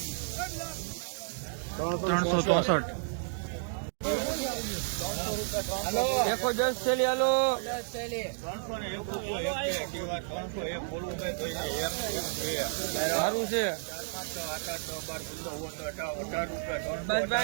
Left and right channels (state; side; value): silent; left; digital silence